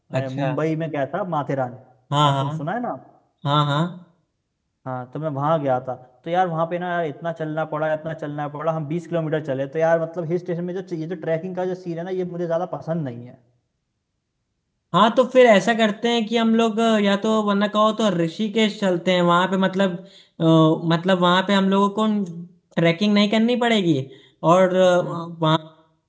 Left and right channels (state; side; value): identical; both; correlation 1.00